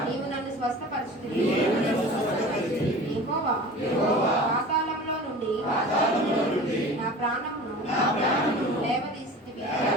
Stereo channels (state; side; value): normal; both; correlation 0.38